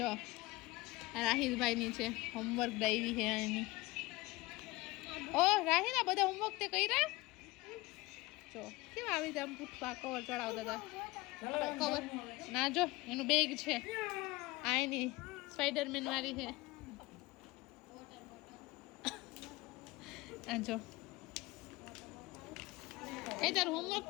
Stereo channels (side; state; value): right; quieter; 21.1 dB